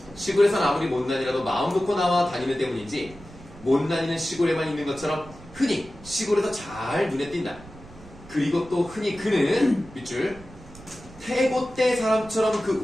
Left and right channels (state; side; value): noise; right; rumble, 20 dB below the sound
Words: 시골에선 아무리 못난이라도 마음 놓고 나와 다니는 때문인지 못난이는 시골에만 있는 것처럼 흔히 시골에서 잘 눈에 띈다. 그리고 또 흔히 그는 밑줄 태고 때 사람처럼 그